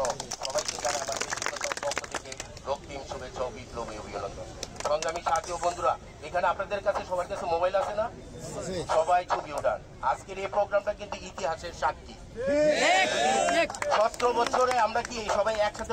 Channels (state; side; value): identical; both; correlation 1.00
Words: সবাইকে জানাই আমার ব্যক্তিগত পক্ষ থেকে রক্তিম শুভেচ্ছা ও বিপ্লবী অভিনন্দন। সংগ্রামী সাথী ও বন্ধুরা, এখানে আপনাদের কাছে সবার কাছে মোবাইল আছে না? সবাই ছবি ওঠান। আজকের এই প্রোগ্রামটা কিন্তু ইতিহাসের সাক্ষী। 17 বছরে আমরা কি সবাই